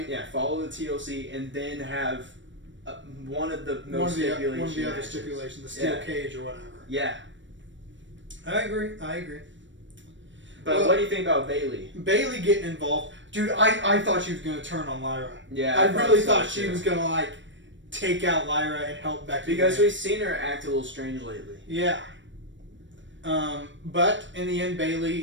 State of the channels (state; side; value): late; left; 0.54 ms